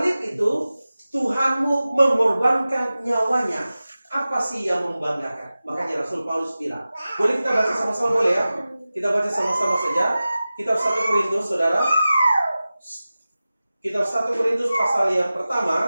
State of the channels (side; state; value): both; inverted; correlation -0.96